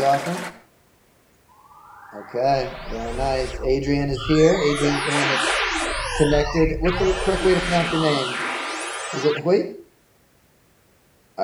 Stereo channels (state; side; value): identical; both; correlation 1.00